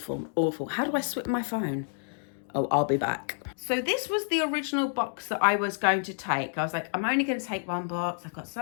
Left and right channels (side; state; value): right; silent; digital silence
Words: awful. How do I switch my phone? Oh, I'll be back. So this was the original box that I was going to take. I was like, I'm only going to take one box. I've got